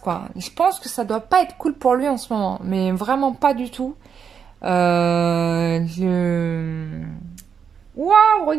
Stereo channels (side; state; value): left; quieter; 7.0 dB